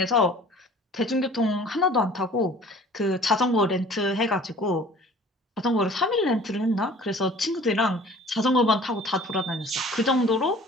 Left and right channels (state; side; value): normal; both; correlation 0.48